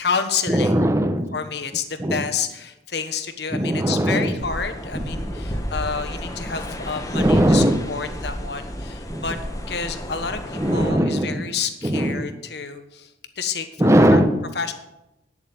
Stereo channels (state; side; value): normal; both; correlation 0.67